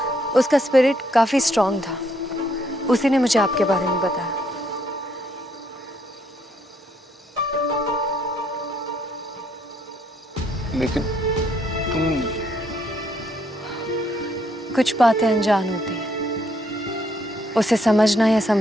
उसका स्पिरिट काफी स्ट्रांग था। उसी ने मुझे आपके बारे में बताया। लेकिन तुम... कुछ बातें अनजान होती हैं, उसे समझना या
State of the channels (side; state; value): both; normal; correlation 0.71